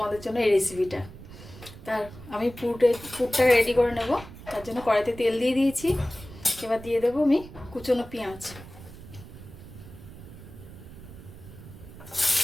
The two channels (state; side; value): noise; right; rumble, 16 dB below the sound